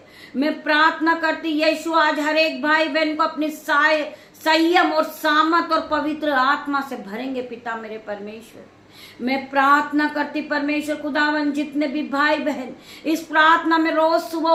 मैं प्रार्थना करती, यीशु आज हर एक भाई बहन को अपनी संयम और सामर्थ और पवित्र आत्मा से भरेंगे पिता मेरे परमेश्वर। मैं प्रार्थना करती परमेश्वर खुदावन, जितने भी भाई बहन इस प्रार्थना में रोज सुबह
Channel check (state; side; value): identical; both; correlation 1.00